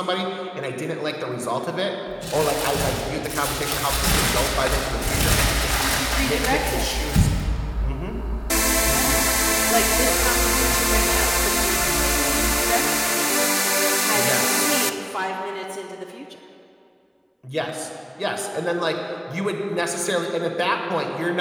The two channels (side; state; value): both; identical; correlation 1.00